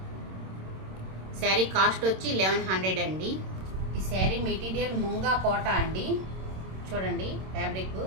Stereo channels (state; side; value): late; left; 26 ms